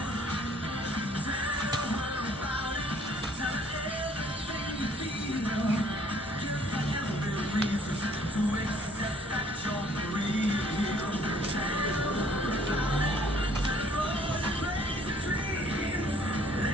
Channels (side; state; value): both; normal; correlation 0.59